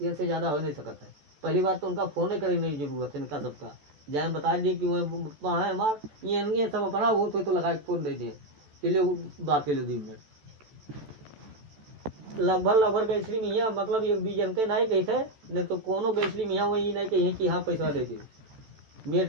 ज्यादा हो नहीं सकता है। पहली बात तो उनका फोन ही करने की जरूरत है इनका सबका, जाए बता दिए कि वह है मार ये सब अपना वो तो लगा के फोन दे दिए चलिए बात के लिए 2 मिनट लगभग गैसली मियाँ मतलब 1-2 जन के नहीं कही थे, नहीं तो कोनो गैसली मियाँ वही नहीं कही कि हाँ पैसा दे दे,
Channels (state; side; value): late; left; 14 ms